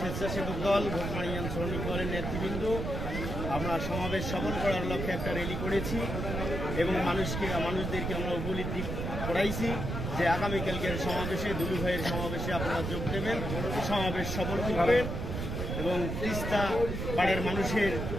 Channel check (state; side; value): noise; right; rumble, 3 dB below the sound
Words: দল, ভোটমারি ইউনিয়ন শ্রমিক দলের নেতৃবৃন্দ আমরা সমাবেশ সফল করার লক্ষ্যে একটা র্যালি করেছি এবং মানুষদেরকে আমরা উপলব্ধি করাইছি যে আগামীকালকের সমাবেশে, দুলু ভাইয়ের সমাবেশে আপনারা যোগ দেবেন, সমাবেশ সফল করবেন এবং তিস্তা পাড়ের মানুষের